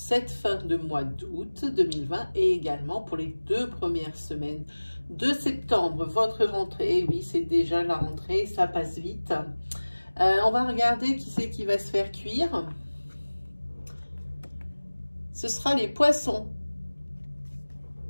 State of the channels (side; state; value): both; inverted; correlation -1.00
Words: fin de mois d'août 2020 et également pour les 2 premières semaines de septembre. Votre rentrée, oui c'est déjà la rentrée, ça passe vite. On va regarder qui c'est qui va se faire cuire. Ce sera les poissons.